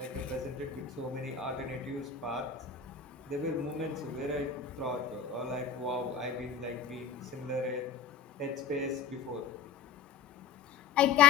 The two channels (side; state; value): right; quieter; 6.8 dB